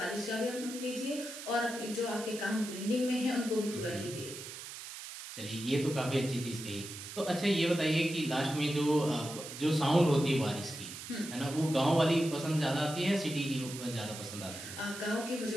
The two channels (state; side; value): noise; right; hiss, 11 dB below the sound